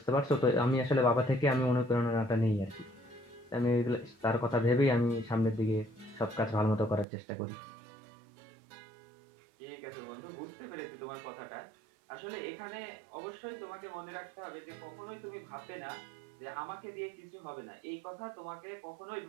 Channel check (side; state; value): left; drops out; at 7.1 s